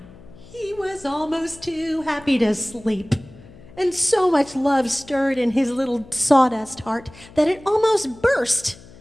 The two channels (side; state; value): left; noise; hum, 21 dB below the sound